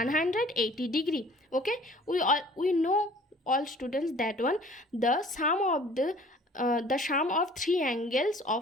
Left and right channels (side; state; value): both; normal; correlation 0.51